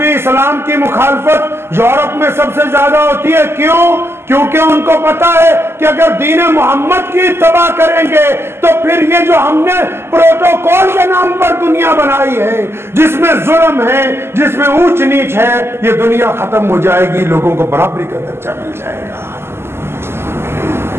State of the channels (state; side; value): late; left; 0.12 ms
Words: इस्लाम की मुखालफत यूरोप में सबसे ज्यादा होती है। क्यों? क्योंकि उनको पता है कि अगर दीन मोहम्मद की तबाह करेंगे तो फिर ये जो हमने प्रोटोकॉल के नाम पर दुनिया बनाई है, जिसमें जुल्म है, जिसमें ऊंच नीच है, ये दुनिया खत्म हो जाएगी, लोगों को बराबरी का दर्जा मिल जाएगा।